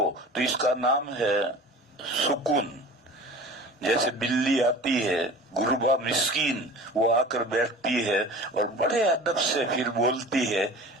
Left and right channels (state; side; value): normal; both; correlation 0.39